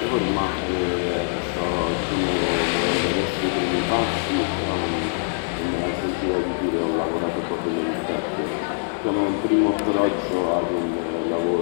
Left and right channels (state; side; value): silent; right; digital silence